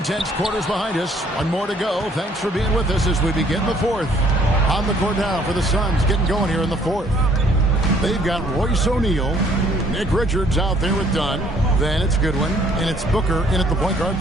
quarters behind us. One more to go. Thanks for being with us as we begin the 4th. On the court now for the Suns, getting going here in the 4th. They've got Royce O'Neal, Nick Richards out there with Dunn. Then it's Goodwin, and it's Booker in at the point guard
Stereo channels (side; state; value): both; normal; correlation 0.61